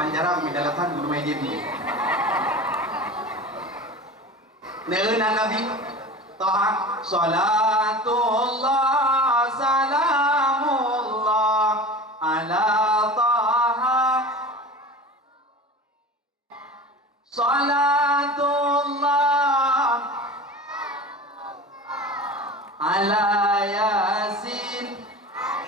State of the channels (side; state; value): both; normal; correlation 0.35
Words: di dalatan guru meja ni. Neuna Nabi Taha salatullah salamullah ala Taha salatullah ala yasin.